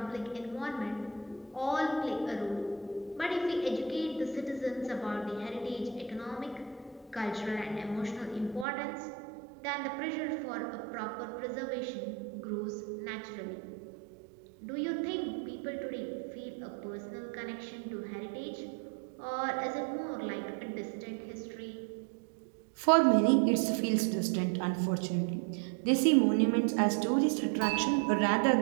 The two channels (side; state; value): left; drops out; at 8.7 s